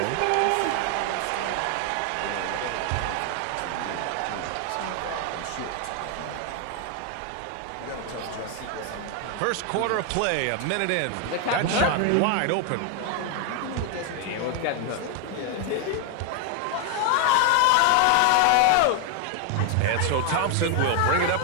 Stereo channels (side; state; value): both; different; correlation 0.01